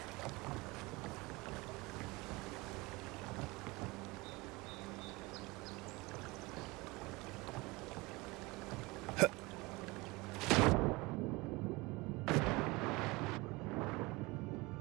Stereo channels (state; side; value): quieter; left; 23.5 dB